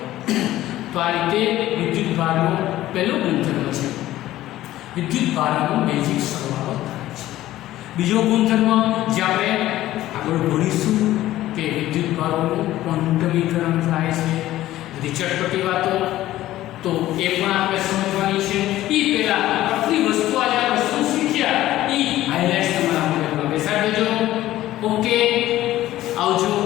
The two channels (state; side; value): quieter; right; 14.8 dB